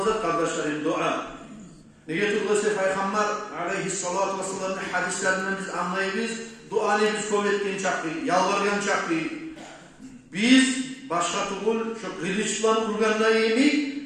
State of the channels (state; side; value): identical; both; correlation 1.00